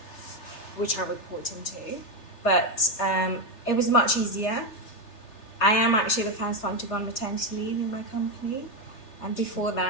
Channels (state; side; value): late; right; 3.3 ms